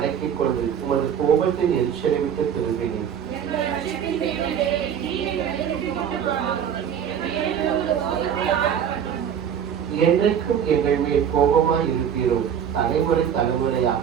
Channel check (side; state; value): left; quieter; 8.5 dB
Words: கொண்டு உமது கோபத்தின் எரிச்சலை விட்டு திரும்பினீர். என்றைக்கும் எங்கள் மேல் கோபமாய் இருப்பீரோ? தலைமுறை தலைமுறையாக